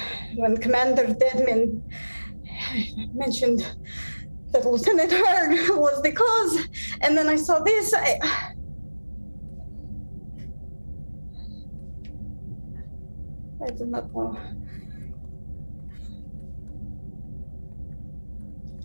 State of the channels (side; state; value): both; inverted; correlation -1.00